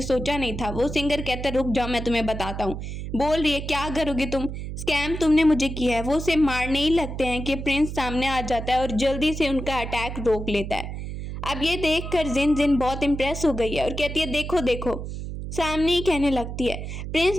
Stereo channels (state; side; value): noise; right; hum, 7 dB below the sound